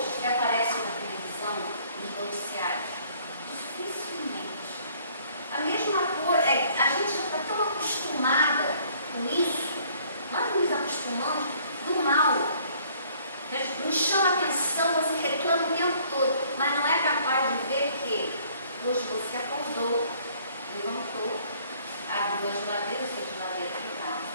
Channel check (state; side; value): inverted; both; correlation -0.59